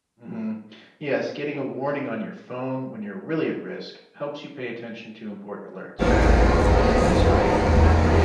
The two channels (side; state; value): both; identical; correlation 1.00